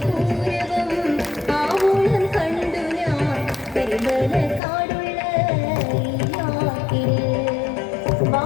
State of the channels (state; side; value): drops out; right; at 4.6 s